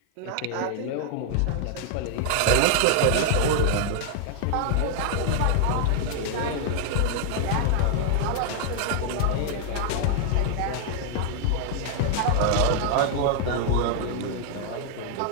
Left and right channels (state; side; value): different; both; correlation 0.00